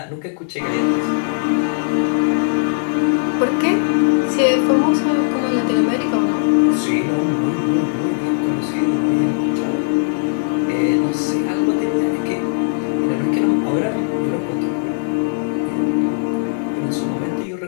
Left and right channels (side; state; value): right; silent; digital silence